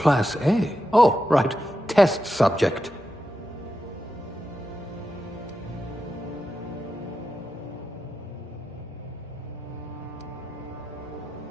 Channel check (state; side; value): normal; both; correlation 0.89